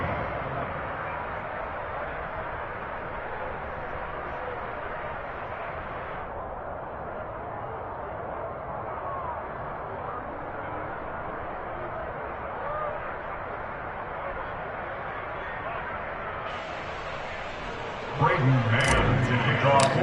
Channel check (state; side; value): identical; both; correlation 1.00